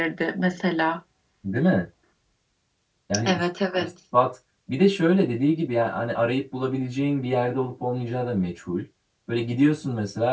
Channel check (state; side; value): identical; both; correlation 1.00